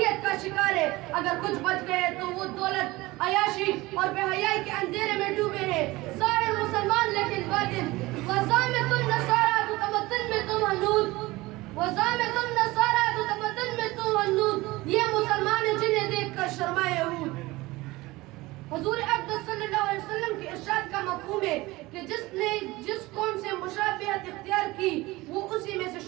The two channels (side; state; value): left; quieter; 20.3 dB